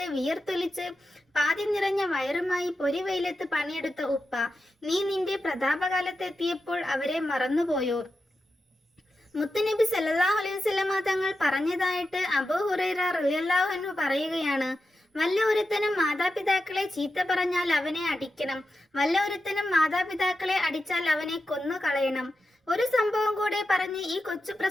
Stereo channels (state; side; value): normal; both; correlation 0.90